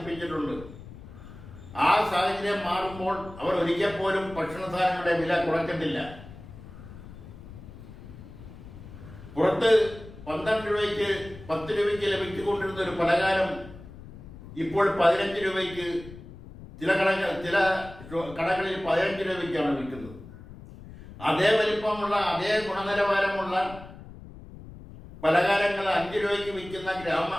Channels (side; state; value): left; noise; rumble, 16 dB below the sound